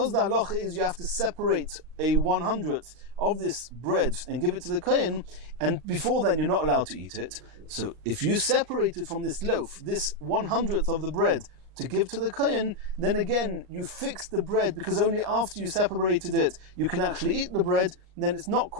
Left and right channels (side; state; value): left; late; 38 ms